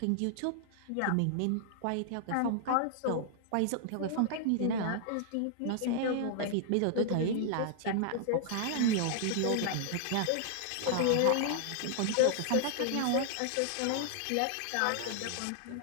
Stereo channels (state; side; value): different; both; correlation -0.01